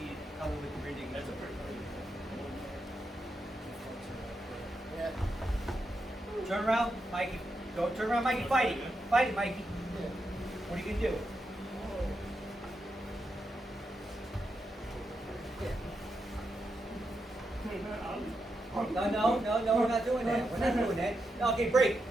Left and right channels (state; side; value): normal; both; correlation 0.85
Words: it cover with the rear naked choke. Yeah. Turn around, Mikey. Go turn around, Mikey. Fight it. Fight it, Mikey. What are you gonna do? No, we're not doing that. We're not doing that. No, okay, break.